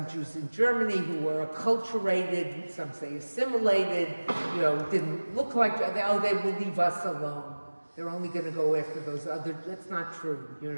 Jews in Germany who were acculturated, some say assimilated, you know, didn't look like, oh, they will leave us alone. They're only going to go after those other, that's not true, you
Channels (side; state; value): both; inverted; correlation -1.00